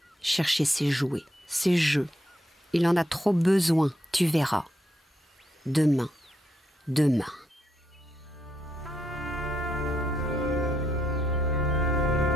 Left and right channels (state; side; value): normal; both; correlation 0.79